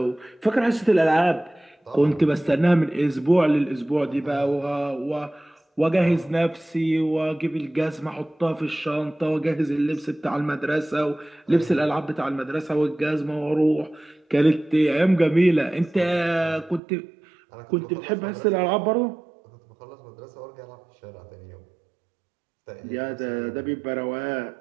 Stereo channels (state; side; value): drops out; left; at 16.8 s